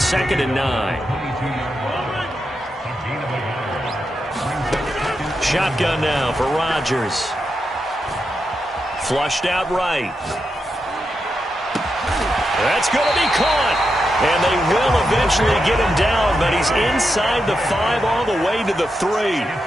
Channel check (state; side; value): normal; both; correlation 0.86